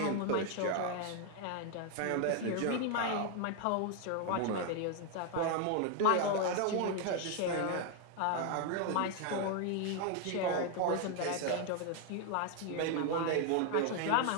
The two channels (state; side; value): different; both; correlation 0.00